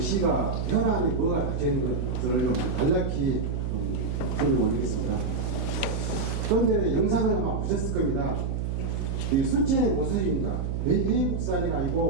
현안이 뭐가 닥쳐있는 것들을 좀 간략히 설명 올리겠습니다. 그런데 영상을 아마 보셨을 겁니다. 이 순천의 모습입니다. 외국산이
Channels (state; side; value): noise; right; hum, 1 dB below the sound